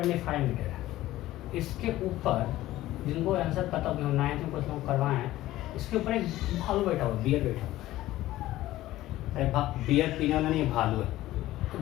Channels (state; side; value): quieter; right; 15.7 dB